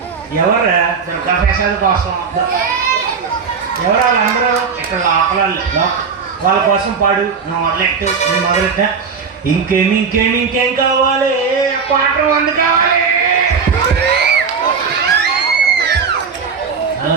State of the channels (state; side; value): quieter; left; 5.8 dB